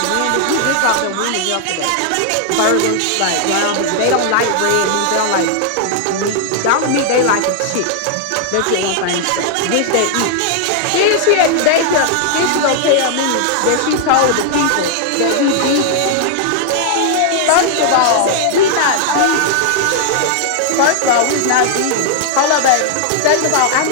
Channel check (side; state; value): both; different; correlation 0.00